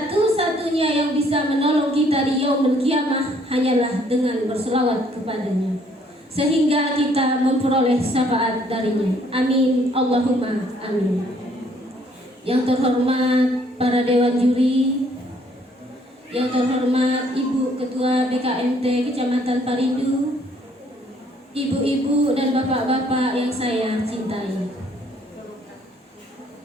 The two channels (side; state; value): both; normal; correlation 0.64